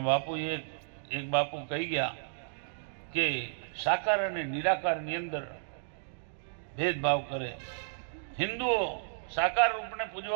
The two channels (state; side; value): silent; left; digital silence